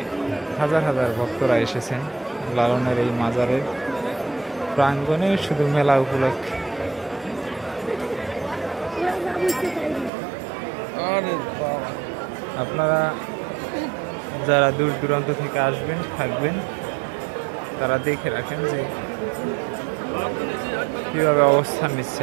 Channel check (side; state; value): left; drops out; at 10.1 s